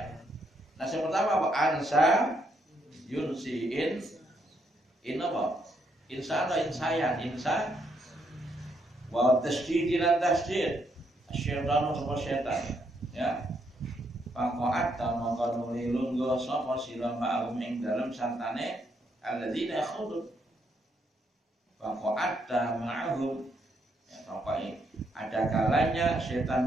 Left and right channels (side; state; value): both; normal; correlation 0.75